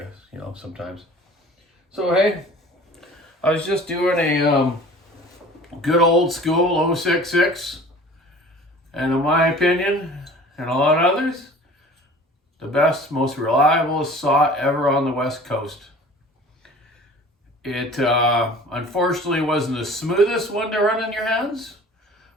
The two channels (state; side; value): normal; both; correlation 0.45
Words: sometimes. So, hey, I was just doing a good old school 066. And in my opinion, and a lot of others, the best, most reliable saw ever on the West Coast. It unfortunately wasn't the smoothest one to run in your hands,